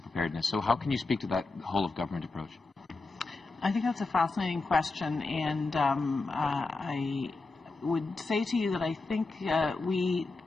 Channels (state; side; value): quieter; right; 3.6 dB